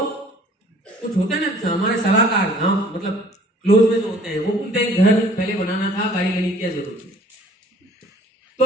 कुछ होते हैं ना हमारे सलाहकार गांव, मतलब क्लोज में जो होते हैं, वो बोलते हैं घर पहले बनाना था, गाड़ी लेने की क्या जरूरत है।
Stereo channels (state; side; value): normal; both; correlation 0.53